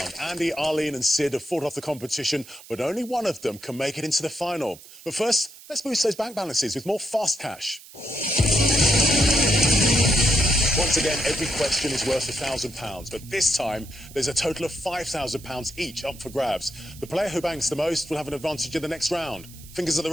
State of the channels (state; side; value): noise; right; hiss, 19 dB below the sound